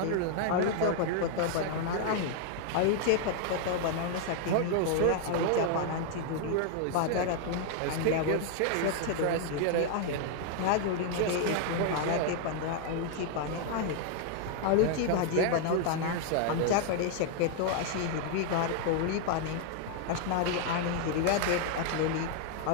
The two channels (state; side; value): different; both; correlation 0.00